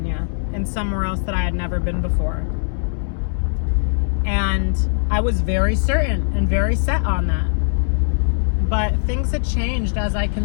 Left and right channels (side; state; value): right; silent; 66 dB below the other